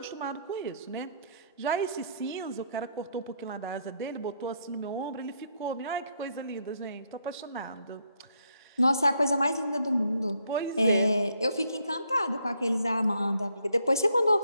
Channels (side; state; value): both; inverted; correlation -0.73